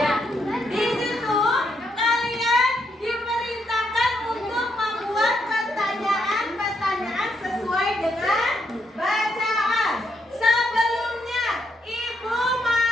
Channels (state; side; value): normal; both; correlation 0.77